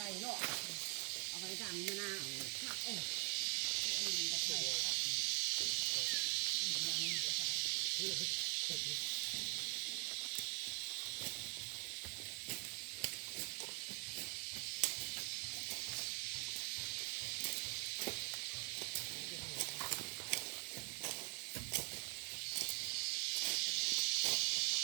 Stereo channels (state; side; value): quieter; left; 36.1 dB